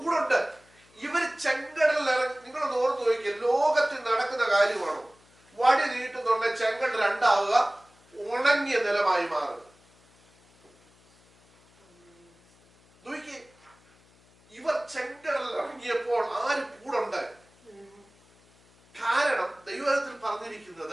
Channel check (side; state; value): left; noise; hum, 30 dB below the sound